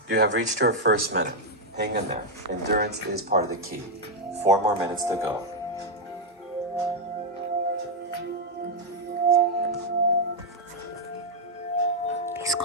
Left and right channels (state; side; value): normal; both; correlation 0.00